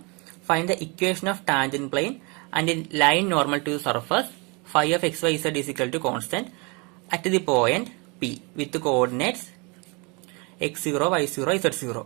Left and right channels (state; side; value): quieter; left; 30.5 dB